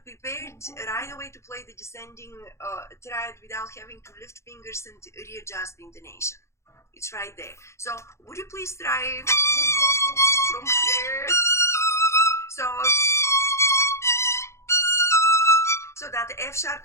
right away to play the descending triad without having to lift fingers and readjust the intonation. It's right there. So would you please try from here? So that the F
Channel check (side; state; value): right; late; 0.13 ms